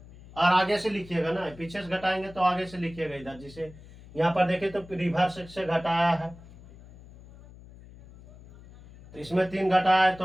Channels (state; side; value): noise; left; hum, 20 dB below the sound